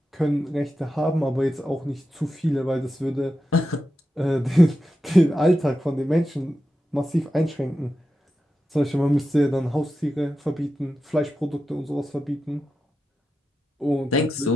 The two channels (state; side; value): normal; both; correlation 0.90